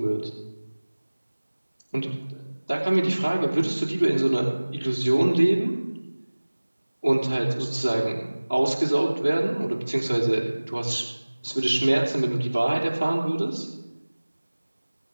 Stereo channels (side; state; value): both; inverted; correlation -1.00